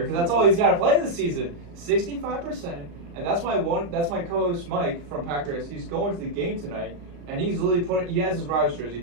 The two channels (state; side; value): late; left; 35 ms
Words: because that's all he's got to play this season. 65%, and that's my co-host Mike from Packers. He's going to the game tonight, and he's literally he has his Rodgers